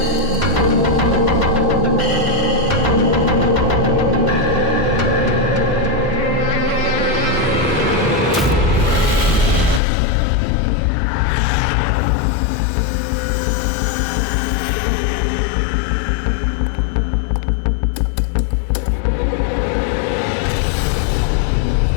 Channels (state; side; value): drops out; right; at 9.8 s